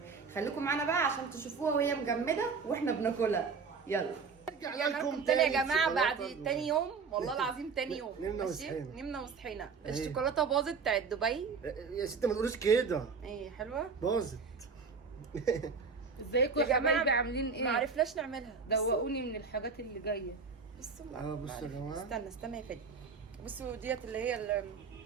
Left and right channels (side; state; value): left; quieter; 5.2 dB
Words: خليكم معانا بقى عشان تشوفوها وهي مجمده واحنا بناكلها. يلا لكم تاني يا جماعه بعد تاني يوم، والله العظيم تاني يوم. نمنا وصحينا. الشوكولاته باظت بتاعت دبي يا ستي ما تقولوش كده. ايه حلوه باظت. ازيكم يا حبايبي عاملين ايه؟ ما عرفناش نعملها. دوقوني من الحاجات اللي جايه. بصوا بصوا يا جماعه، استنى يا فادي. بصوا ديت اللي هي